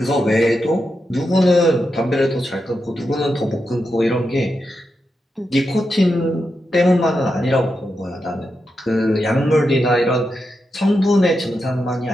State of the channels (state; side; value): normal; both; correlation 0.87